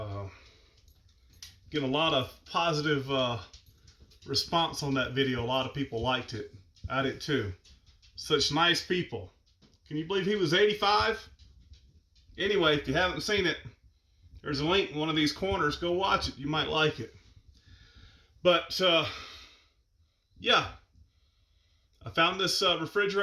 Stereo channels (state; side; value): identical; both; correlation 1.00